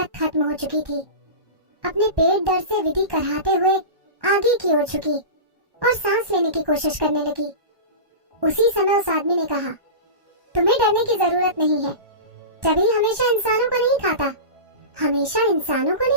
खत्म हो चुकी थी। अपने पेट दर्द से विधि कराहते हुए आगे की ओर झुकी और सांस लेने की कोशिश करने लगी। उसी समय उस आदमी ने कहा, तुम्हें डरने की जरूरत नहीं है। टबी हमेशा इंसानों को नहीं खाता। हमेशा इंसानों को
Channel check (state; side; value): late; left; 1.1 ms